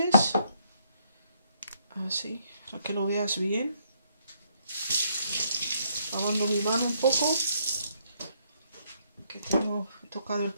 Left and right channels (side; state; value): both; inverted; correlation -0.71